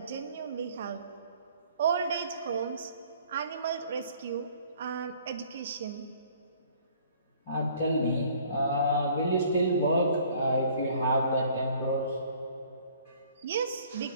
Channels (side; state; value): both; inverted; correlation -0.56